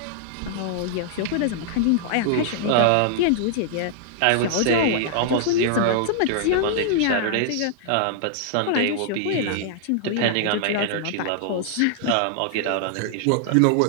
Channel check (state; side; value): different; both; correlation -0.01